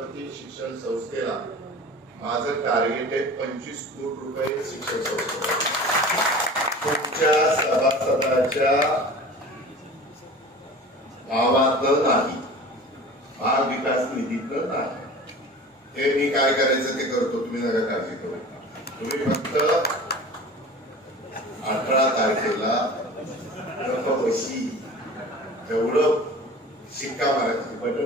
शिक्षण संस्थेला माझं टार्गेट आहे 25 कोटी रुपये शिक्षण संस्थेला. तुमच्या सभासदाच्या भावातलं नाही, भाग विकास निधीतलं नाही. ते मी काय करायचं ते करतो, तुम्ही नका काळजी करू. तुम्ही फक्त 18 तारखेला गप्पबशी एवढं शिक्का मारायचं,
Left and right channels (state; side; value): normal; both; correlation 0.39